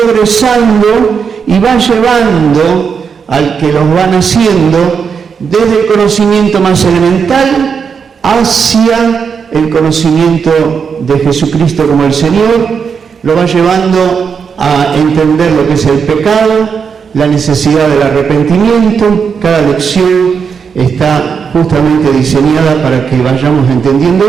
y va llevando al que los van haciendo desde el conocimiento más elemental hacia el conocimiento de Jesucristo como el Señor, lo va llevando a entender lo que es el pecado, la necesidad del arrepentimiento. Cada lección está justamente diseñada para que vayamos entendiendo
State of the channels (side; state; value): left; quieter; 6.3 dB